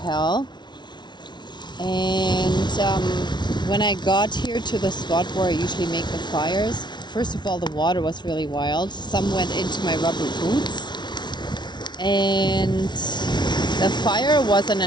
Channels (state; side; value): late; right; 0.21 ms